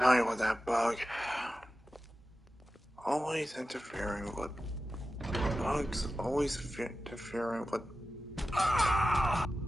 you with that bug? Always interfering with... Bugs always interfering with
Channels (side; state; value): both; normal; correlation 0.94